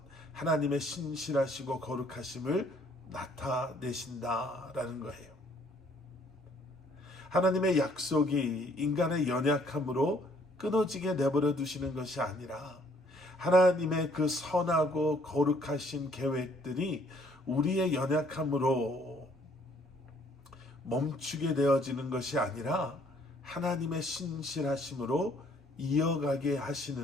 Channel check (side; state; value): both; normal; correlation 0.63